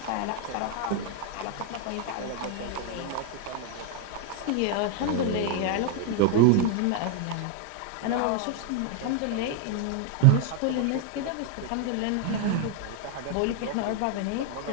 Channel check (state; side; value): different; both; correlation 0.00